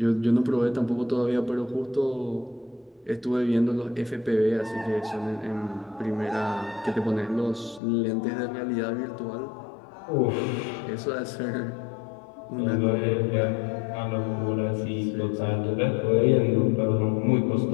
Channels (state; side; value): drops out; right; at 7.8 s